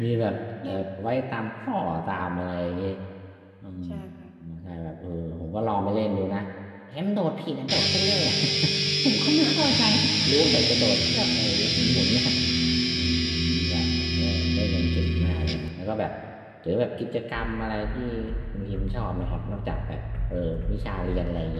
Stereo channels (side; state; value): both; identical; correlation 1.00